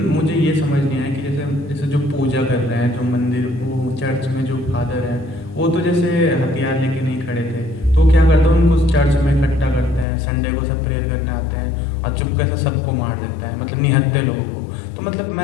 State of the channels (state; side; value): drops out; right; at 10.1 s